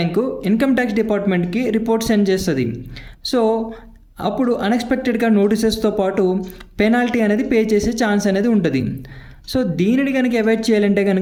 ఇన్కమ్ ట్యాక్స్ డిపార్ట్మెంట్కి రిపోర్ట్ సెండ్ చేస్తుంది. సో అప్పుడు అన్ఎక్స్పెక్టెడ్గా నోటీసెస్తో పాటు పెనాల్టీ అనేది పే చేసే ఛాన్స్ అనేది ఉంటుంది. సో దీనిని కనుక అవాయిడ్ చేయాలంటే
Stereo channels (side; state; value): both; identical; correlation 1.00